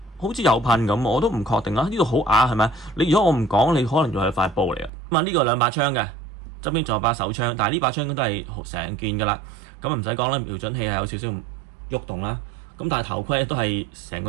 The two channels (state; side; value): drops out; left; at 4.9 s